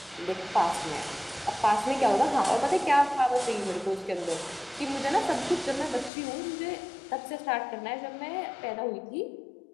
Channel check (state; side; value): drops out; right; at 6.1 s